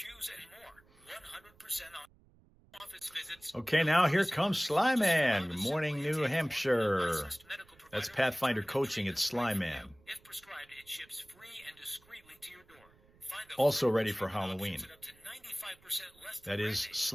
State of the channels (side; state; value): right; noise; rumble, 29 dB below the sound